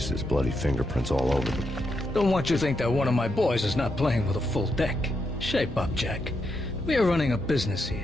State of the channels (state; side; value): normal; both; correlation 0.82